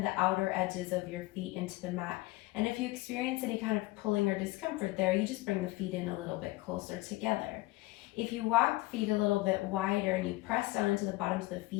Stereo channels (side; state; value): right; quieter; 20.1 dB